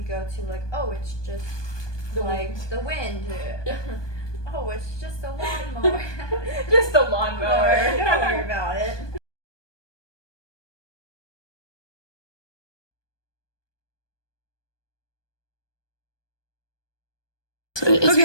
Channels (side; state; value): right; late; 1.2 ms